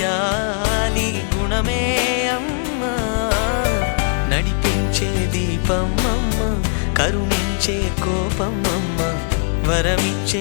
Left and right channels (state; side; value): silent; right; 66 dB below the other